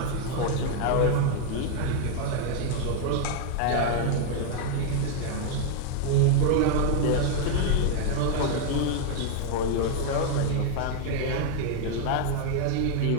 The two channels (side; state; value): both; different; correlation 0.00